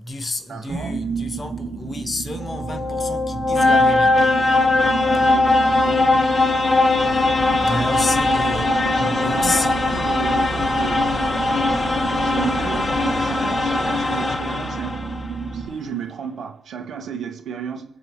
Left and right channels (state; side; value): normal; both; correlation 0.83